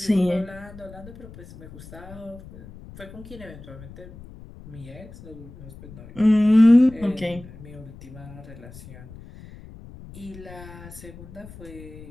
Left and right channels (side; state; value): left; noise; rumble, 17 dB below the sound